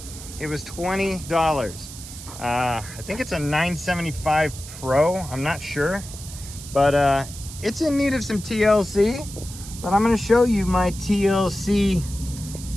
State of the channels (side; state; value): right; noise; hiss, 13 dB below the sound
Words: It was $20. I think it's a 975 Pro. I'm not sure, but it's in need of some TLC. But I'm going to show you my TLC